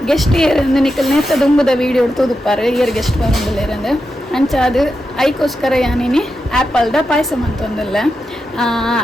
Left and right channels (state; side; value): normal; both; correlation 0.88